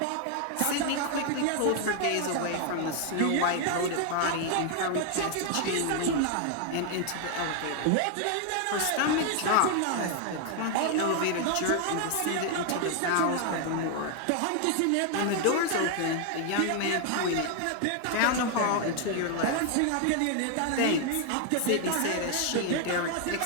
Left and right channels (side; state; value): both; different; correlation 0.00